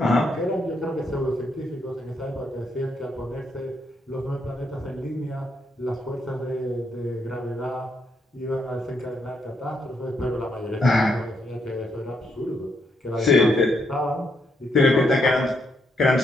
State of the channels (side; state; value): both; normal; correlation 0.77